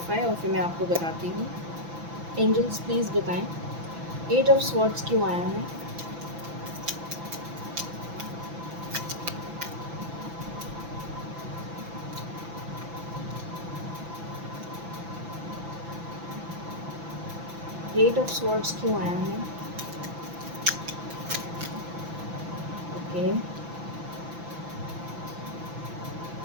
और फिर मैं आपको बताती हूँ। एंजल्स प्लीज़ बताएं एट ऑफ स्वॉर्ड्स क्यों आया है। एट ऑफ स्वॉर्ड्स क्यों आया है। ओके,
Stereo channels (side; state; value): left; late; 6.0 ms